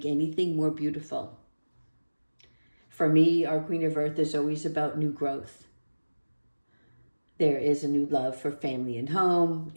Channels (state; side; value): inverted; both; correlation -1.00